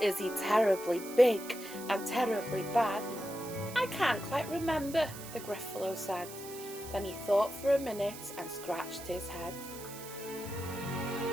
Is he terribly big and terribly bad? I can't quite remember, the Gruffalo said. Then he thought for a minute and scratched his head.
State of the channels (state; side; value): noise; right; hiss, 13 dB below the sound